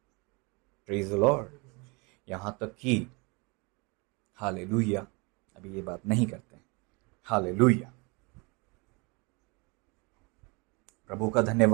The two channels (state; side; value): quieter; left; 29.1 dB